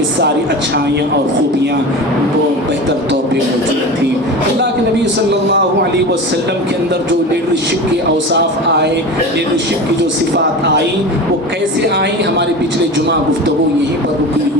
ساری اچھائیاں اور خوبیاں وہ بہتر طور پہ موجود تھیں. اللہ کے نبی صلی اللہ علیہ وسلم کے اندر جو لیڈرشپ کے اوصاف آئے، لیڈرشپ کی جو صفات آئی، وہ کیسے آئیں؟ ہمارے پچھلے جمعہ گفتگو یہیں پر رکی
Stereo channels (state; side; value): normal; both; correlation 0.30